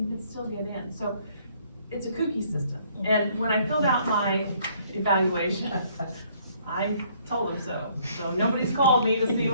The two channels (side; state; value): both; inverted; correlation -0.64